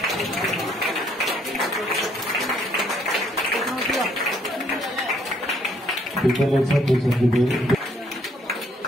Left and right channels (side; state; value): both; normal; correlation 0.67